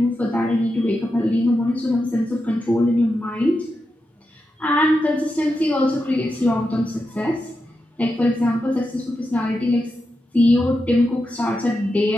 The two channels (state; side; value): normal; both; correlation 0.88